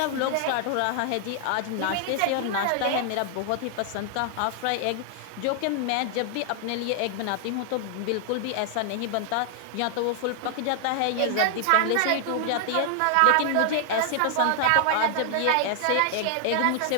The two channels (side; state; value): both; different; correlation 0.00